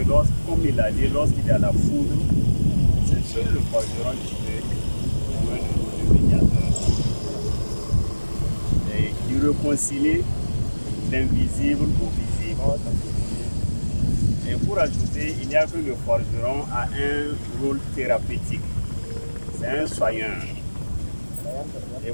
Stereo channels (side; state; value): both; inverted; correlation -1.00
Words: comme il a dit, lorsqu'il y a la foudre, c'est seul le forgeron qui peut jouer le rôle de médiateur. Et qui réconcilie l'invisible au visible. Et pour ajouter, il n'y a que le forgeron a un rôle thérapeutique. C'est un soigneur. Et